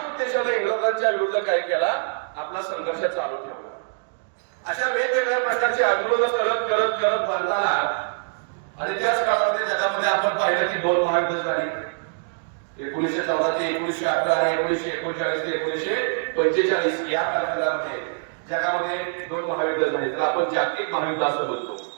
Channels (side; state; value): left; silent; digital silence